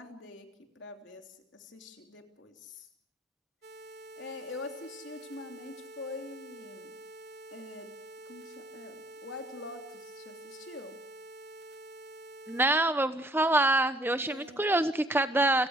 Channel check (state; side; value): normal; both; correlation 0.61